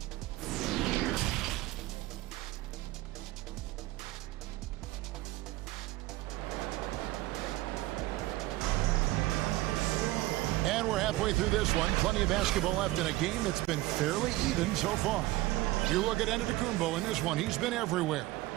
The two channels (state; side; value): quieter; left; 18.0 dB